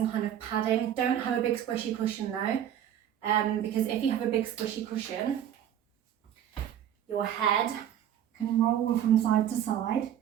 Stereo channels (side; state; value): left; quieter; 10.3 dB